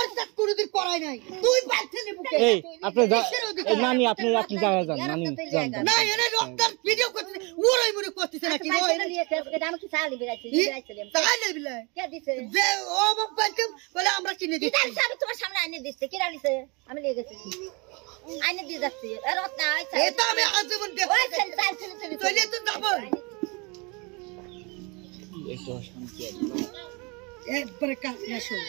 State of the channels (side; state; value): left; quieter; 29.3 dB